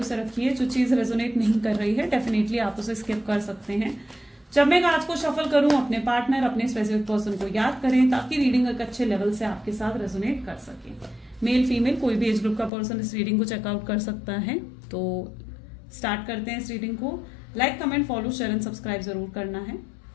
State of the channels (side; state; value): right; drops out; at 12.7 s